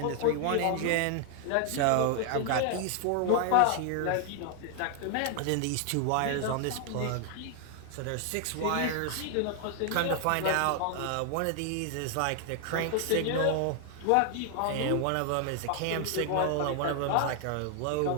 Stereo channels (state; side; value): different; both; correlation 0.00